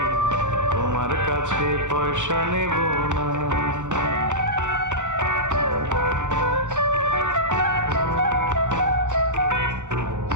তোমার কাছে পয়সা নেব না।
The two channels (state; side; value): late; left; 0.85 ms